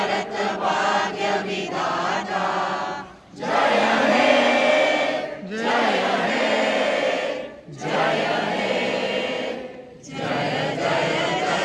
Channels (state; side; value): identical; both; correlation 1.00